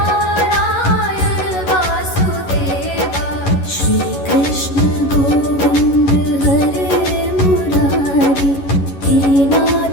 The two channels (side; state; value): right; late; 11 ms